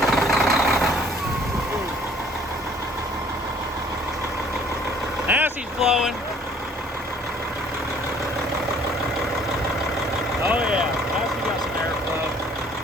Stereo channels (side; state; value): both; normal; correlation 0.57